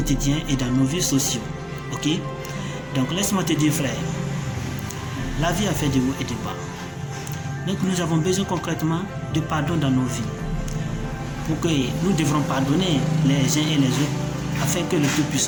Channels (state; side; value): identical; both; correlation 1.00